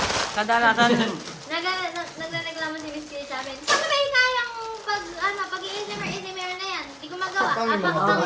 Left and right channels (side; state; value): both; identical; correlation 1.00